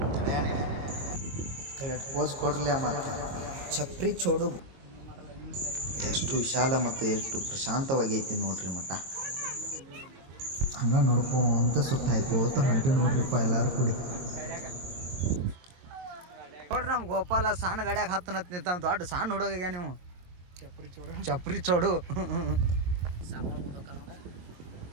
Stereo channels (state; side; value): late; left; 22 ms